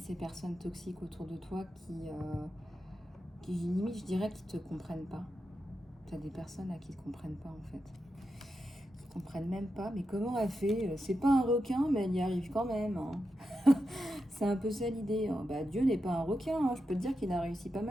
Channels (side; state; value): both; normal; correlation 0.88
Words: personnes toxiques autour de toi qui limite, je dirais, qui te comprennent pas. Tu as des personnes là qui te comprennent pas, en fait. Qui comprennent même pas. Mais comment elle fait? C'est pas un requin, mais elle y arrive quand même. Hein. C'est un peu ça l'idée. Hein. Bah, Dieu n'est pas un requin. Hein. Je peux te dire qu'il a réussi pas